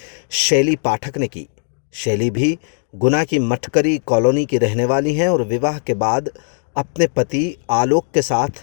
शैली पाठक ने की। शैली भी गुना की मटकरी कॉलोनी की रहने वाली हैं और विवाह के बाद अपने पति आलोक के साथ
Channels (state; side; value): silent; right; digital silence